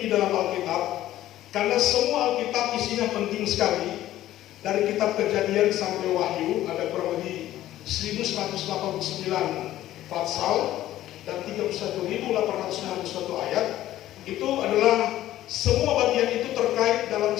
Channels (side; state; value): right; quieter; 13.9 dB